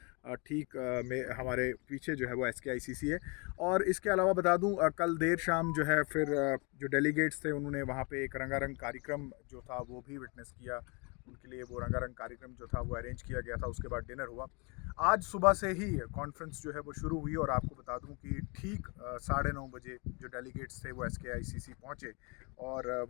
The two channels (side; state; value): right; quieter; 31.1 dB